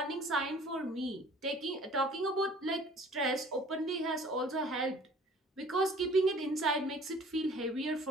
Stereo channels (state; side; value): normal; both; correlation 0.51